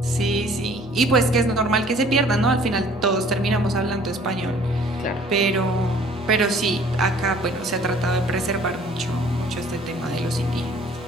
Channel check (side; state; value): both; normal; correlation 0.54